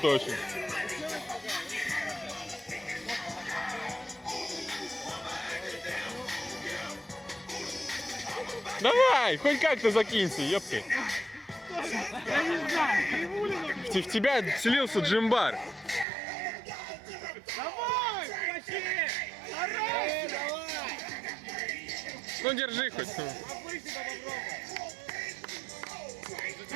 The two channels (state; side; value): drops out; left; at 16.1 s